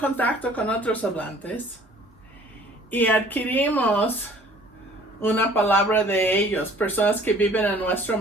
con otros hablantes. Y adquirimos una palabra de ellos, personas que viven en nuestro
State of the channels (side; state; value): both; normal; correlation 0.53